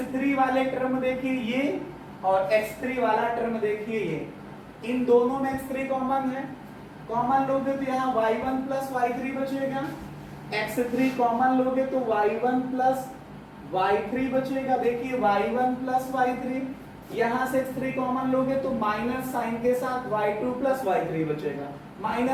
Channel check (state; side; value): identical; both; correlation 1.00